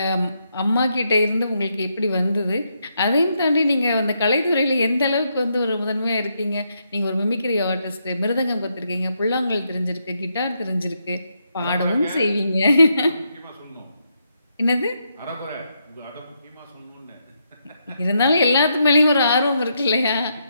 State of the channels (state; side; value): inverted; both; correlation -0.79